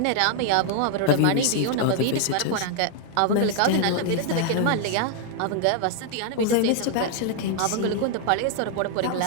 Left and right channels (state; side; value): different; both; correlation 0.00